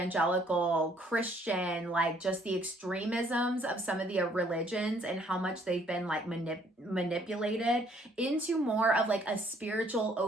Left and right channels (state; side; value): normal; both; correlation 0.63